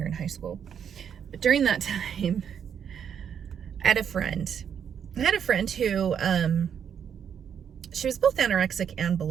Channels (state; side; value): quieter; left; 8.0 dB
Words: in high school. But during that time, I had a friend who she was both anorexic and